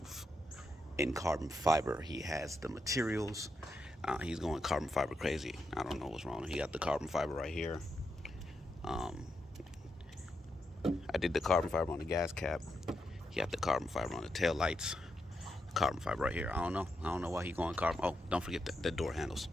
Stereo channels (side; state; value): both; normal; correlation 0.83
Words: in carbon fiber. He has the materials. He's going carbon fiber crazy. I don't know what's wrong. He got the carbon fiber right here. I did the carbon fiber on the gas cap. He got the carbon fiber on the tail lights. Carbon fiber right here. I don't know why he going carbon. Oh, don't forget the door handles.